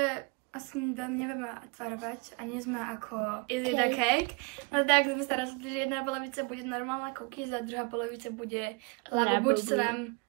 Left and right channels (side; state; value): left; quieter; 30.8 dB